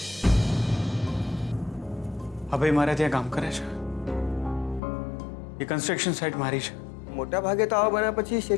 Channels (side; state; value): right; drops out; at 4.8 s